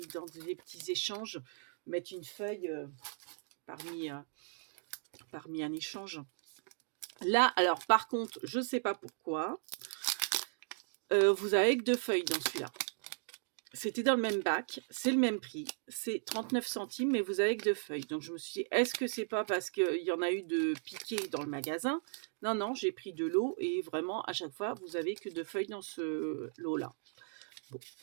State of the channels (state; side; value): silent; left; digital silence